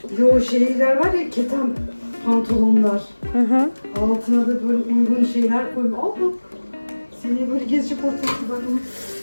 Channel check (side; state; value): both; inverted; correlation -1.00